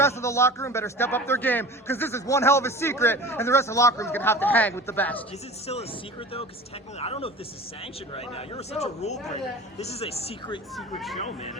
of the locker room better step up their game, because this is one hell of a secret, and the rest of the locker room's going to have to hang with the best. Is it still a secret, though? Because technically, I don't know if this is sanctioned right now. You're such a rule breaker. This is a secret show, man.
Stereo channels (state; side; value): normal; both; correlation 0.38